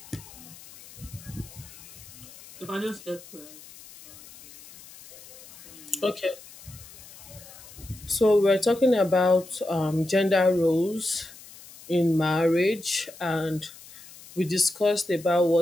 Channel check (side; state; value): left; noise; hiss, 19 dB below the sound